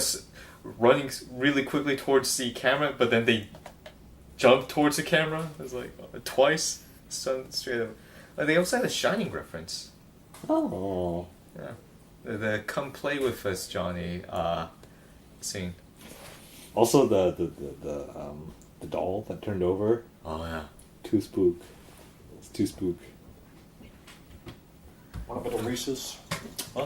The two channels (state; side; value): identical; both; correlation 1.00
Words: running really quickly towards the camera, but then they jumped towards the camera. It was like twice. Straight up. They also had a Shining reference. Oh. Yeah. The "Come play with us, Johnny" scene. Also the doll that turned over. Oh yeah. Too spook. It's too spook. Want a bit of Reese's?